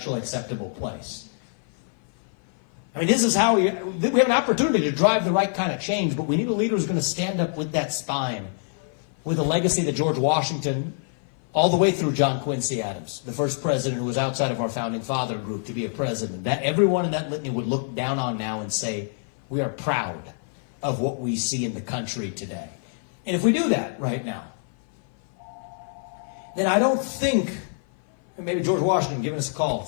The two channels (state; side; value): silent; right; 56 dB below the other